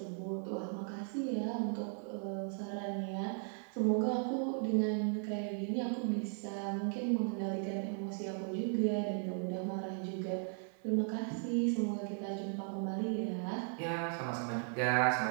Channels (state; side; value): silent; left; 53 dB below the other